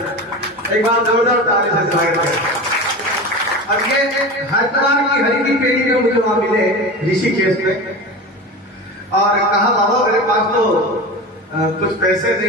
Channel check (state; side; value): normal; both; correlation 0.29